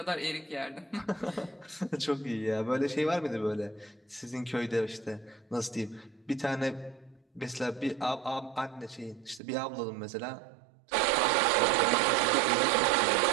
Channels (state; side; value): drops out; left; at 9.4 s